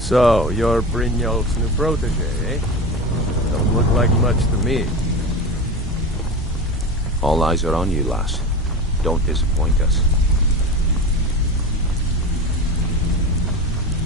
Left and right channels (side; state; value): both; normal; correlation 0.28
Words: you're Brynjolf's new protege, eh? Don't look like much to me. All eyes are on you, lass. Don't disappoint us.